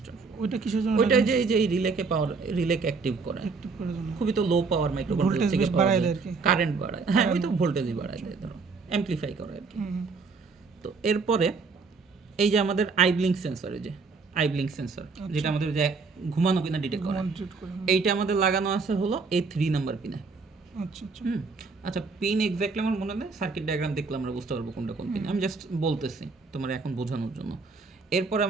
ওইটা কিসের জন্য? ওইটা যে এই যে রিলেকে অ্যাক্টিভ করে, অ্যাক্টিভ করার জন্য। খুবই তো লো পাওয়ার মাইক্রোকন্ট্রোলার ভোল্টেজ থেকে বেশ বাড়ায় দেয় আর কি। কারেন্ট বাড়ায়, হ্যাঁ ওই তো ভোল্টেজই বাড়ায় দেয়, ধরো অ্যামপ্লিফাই করে আর কি। তো এরপরে এই যে আমাদের আইব্লিঙ্ক সেন্সর, এই যে আইব্লিঙ্ক সেন্সর, যেটা আমাদের যে ঘুমানো কিনা ডিটেক্ট করে, এইটা আমাদের লাগানো আছে হলো A3 নাম্বার পিনে। আচ্ছা আচ্ছা, আচ্ছা, পিন এক্স্যাক্টলি আমার মনে নেই, সার্কিট ডায়াগ্রাম দেখলে আমরা বুঝতে পারবো কোনটা কোন পিন, আমি জাস্ট বলতেছি তোমার এখন বোঝানোর জন্য। এরপর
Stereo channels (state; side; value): quieter; left; 4.5 dB